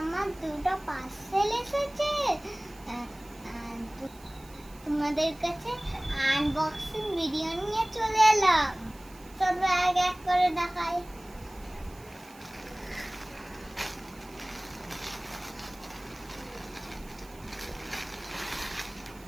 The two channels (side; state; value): right; noise; hiss, 23 dB below the sound